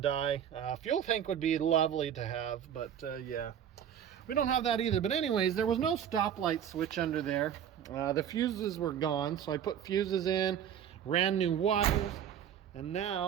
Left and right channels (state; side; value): quieter; left; 9.3 dB